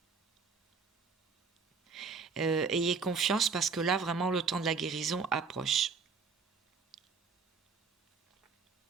Ayez confiance parce que là, vraiment, le temps de la guérison approche.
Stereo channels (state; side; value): quieter; left; 5.0 dB